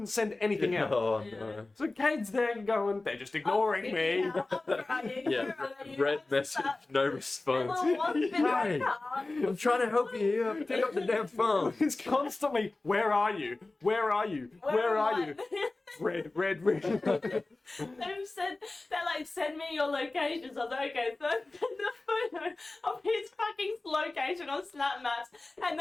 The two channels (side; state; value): right; quieter; 3.1 dB